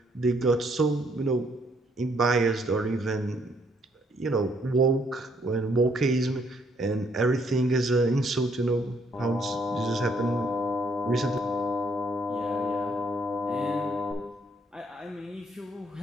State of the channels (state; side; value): normal; both; correlation 0.69